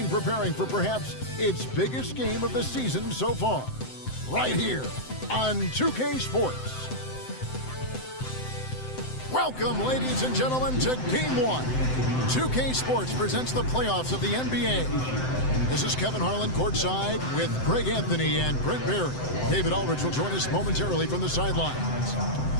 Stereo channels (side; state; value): right; late; 7.8 ms